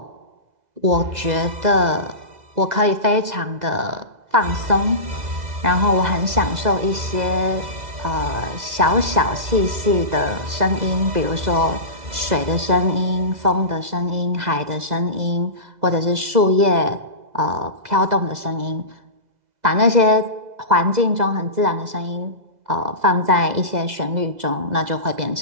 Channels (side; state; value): left; late; 2.0 ms